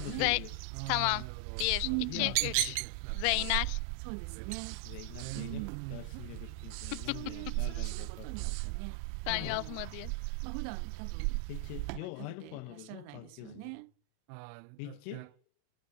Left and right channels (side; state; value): both; different; correlation 0.00